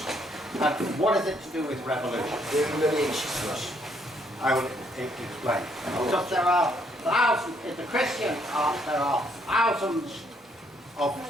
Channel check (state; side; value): normal; both; correlation 0.70